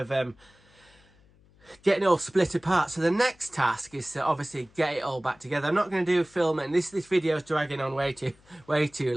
getting it all split apart. So the next task is to obviously get it all back together. I'm not going to do filming. This video is dragging on way too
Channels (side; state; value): left; noise; hum, 29 dB below the sound